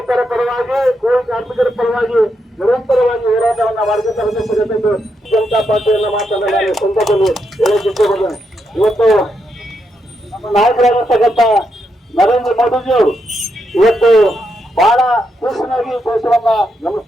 ಪರವಾಗಿ, ಕೂಲಿ ಕಾರ್ಮಿಕರ ಪರವಾಗಿ ನಿರಂತರವಾಗಿ ಹೋರಾಟವನ್ನ ಮಾಡಿದಂತ ಜನತಾ ಪಾರ್ಟಿಯನ್ನ ಮಾತನ್ನ ನಾನು ಸಂದರ್ಭದಲ್ಲಿ ಹೇಳಕ್ ಇಷ್ಟಪಡ್ತೇನೆ. ಇವತ್ತು ನಮ್ಮ ನಾಯಕರಾಗಿರ್ತಕ್ಕಂಥ ನರೇಂದ್ರ ಮೋದಿಜಿಯವರು ಇವತ್ತು ಬಹಳ ಸೂಕ್ಷ್ಮವಾಗಿ ದೇಶವನ್ನ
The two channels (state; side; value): normal; both; correlation 0.81